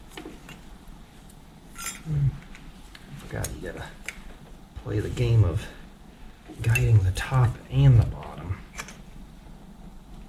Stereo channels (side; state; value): both; identical; correlation 1.00